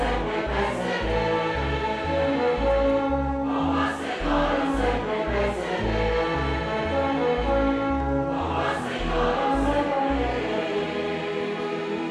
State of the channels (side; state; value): both; identical; correlation 1.00